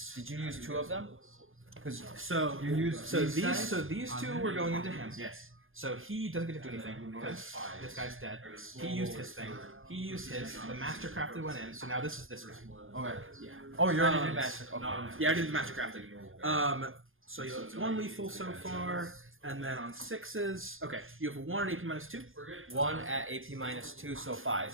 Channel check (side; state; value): left; late; 0.59 ms